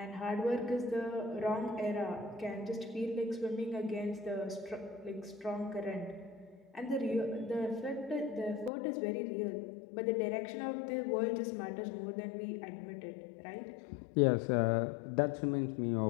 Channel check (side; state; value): right; drops out; at 8.7 s